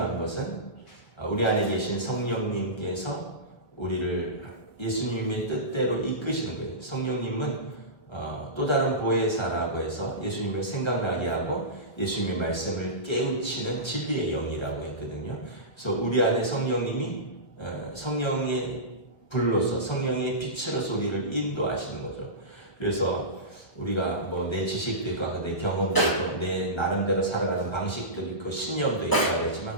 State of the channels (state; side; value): late; right; 1.4 ms